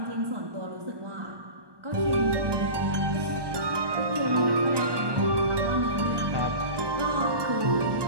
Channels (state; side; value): late; left; 1.2 ms